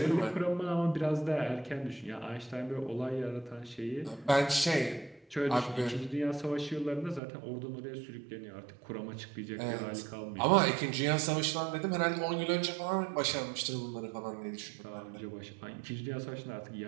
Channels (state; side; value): drops out; left; at 7.2 s